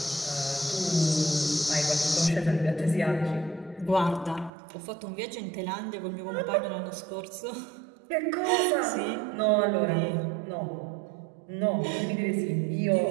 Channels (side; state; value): left; drops out; at 4.5 s